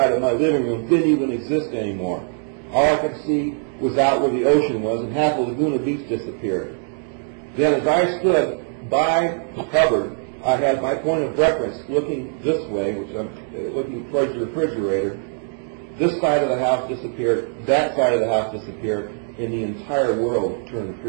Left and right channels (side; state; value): left; silent; 63 dB below the other